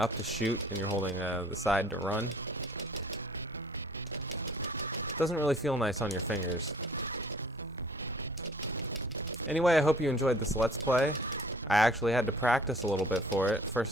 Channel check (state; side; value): normal; both; correlation 0.53